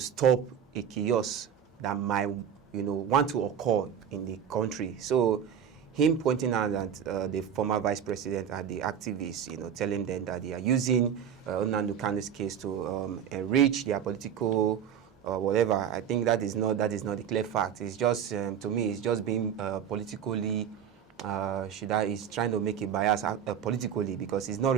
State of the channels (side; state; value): left; quieter; 8.6 dB